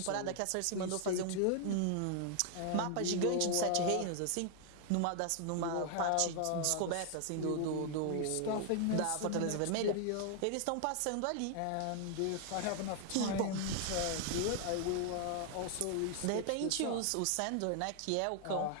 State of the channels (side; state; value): both; different; correlation 0.00